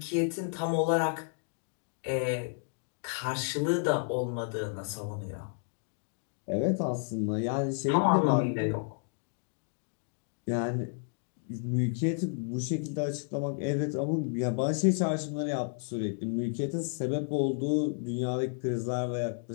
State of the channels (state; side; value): silent; right; 57 dB below the other